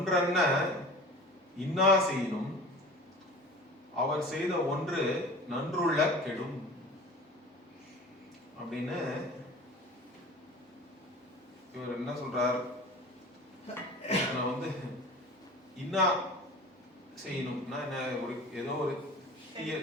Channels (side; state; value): both; normal; correlation 0.39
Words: இன்னா செய்யணும் அவர் செய்த ஒன்று நன்றுள்ள கெடும் அப்படின்னு இவர் என்ன சொல்றார். வந்து இன்னா செய்யணும்னா என்ன, ஒரு ஏதோ ஒரு